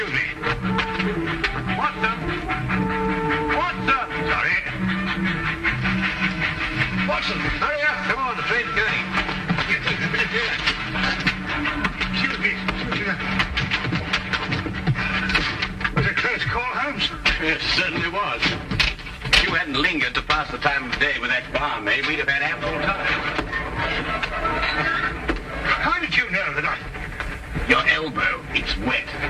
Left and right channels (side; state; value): both; identical; correlation 1.00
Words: me. What the? Sorry. Watson, hurry up. Come on, the train's going. Excuse me. Was it a close call, Holmes? Yes, certainly was. If you hadn't lingered to pass the time of day with that barmaid, we'd have had ample time. How did you know that Your elbow, it's wet.